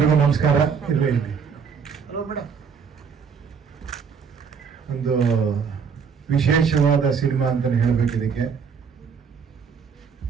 ನಮಸ್ಕಾರ. ಒಂದು ವಿಶೇಷವಾದ ಸಿನಿಮಾ ಅಂತ ಹೇಳಬೇಕು. ಇದಕ್ಕೆ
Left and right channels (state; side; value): quieter; left; 6.3 dB